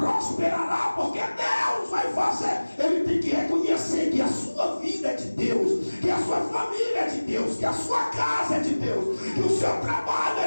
porque Deus vai fazer. Ele tem que reconhecer que a sua vida é de Deus, que a sua família é de Deus, que a sua casa é de Deus, que o seu trabalho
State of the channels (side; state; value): both; inverted; correlation -1.00